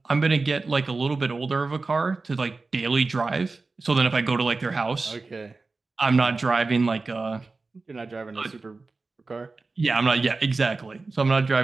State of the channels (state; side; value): quieter; left; 3.8 dB